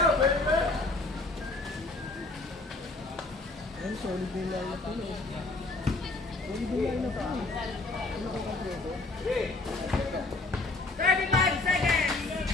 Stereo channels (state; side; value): quieter; right; 3.2 dB